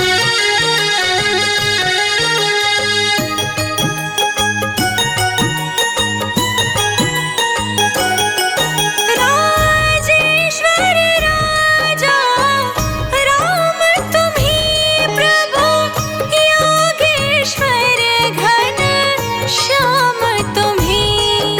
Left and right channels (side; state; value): both; identical; correlation 1.00